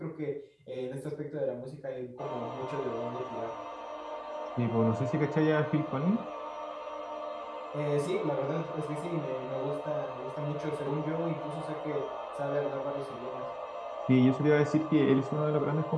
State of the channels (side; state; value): both; identical; correlation 1.00